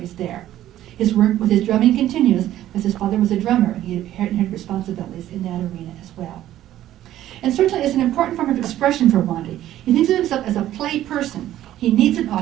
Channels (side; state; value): left; quieter; 13.0 dB